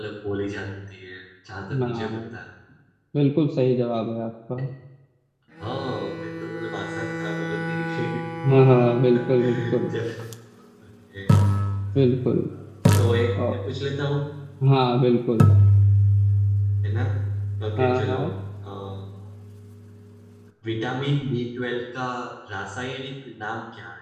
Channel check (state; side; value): identical; both; correlation 1.00